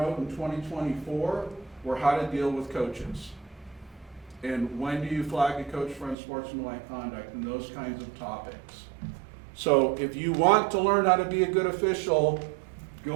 in 2024 were how to deal with coaches. And when do you flag a coach for unsportsmanlike conduct, and those kinds of topics. So if you want to learn how to be a good official,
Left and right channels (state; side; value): drops out; left; at 6.2 s